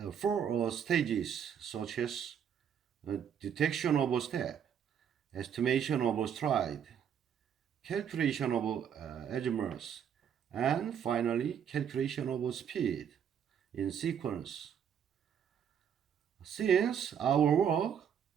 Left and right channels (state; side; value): quieter; left; 8.3 dB